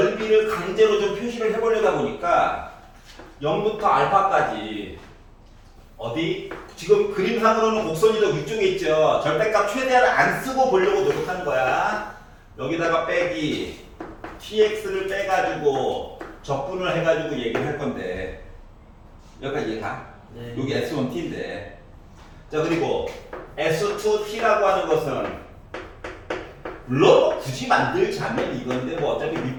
강제로 좀 표시를 해보려다 보니까 0부터 알파까지 어디? 지금 그림상으로는 곡선이 더 위쪽에 있죠. 절대값 최대한을 안 쓰고 보려고 노력하는 거야. 여기다가 빼기 tx를 빼가지고 적분을 해가지고 얘기를 할 건데 여기까지 이해가? 네. 여기 S1t인데 자, 그리고 S2t라고 하는 것은 물론 굳이 만들자면 이건데 뭐 어차피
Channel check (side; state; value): both; identical; correlation 1.00